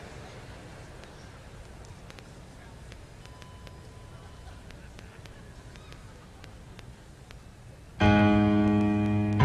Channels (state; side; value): identical; both; correlation 1.00